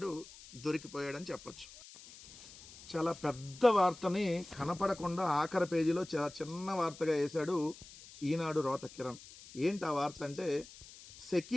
దొరికిపోయాడని చెప్పచ్చు. చాలా పెద్ద వార్తని కనపడకుండా ఆఖరి పేజీలో చాలా చిన్న వార్తగా వేశాడు ఈనాడు రోత కిరణ్. ఏంటి ఆ వార్త అంటే,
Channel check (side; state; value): left; noise; hiss, 18 dB below the sound